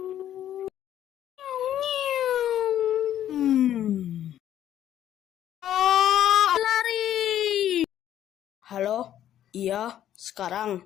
Oh, lari. Halo? Iya, sekarang.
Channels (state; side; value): quieter; right; 11.3 dB